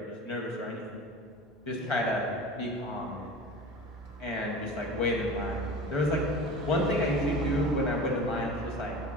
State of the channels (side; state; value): both; normal; correlation 0.35